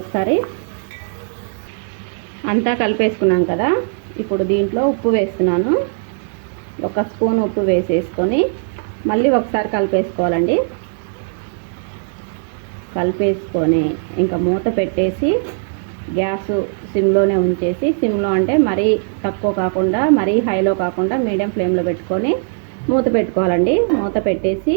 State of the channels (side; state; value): left; silent; digital silence